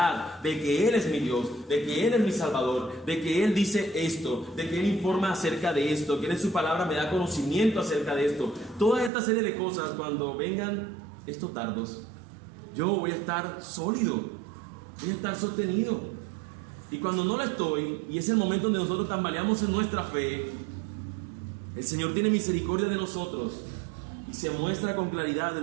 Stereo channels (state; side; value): drops out; left; at 9.1 s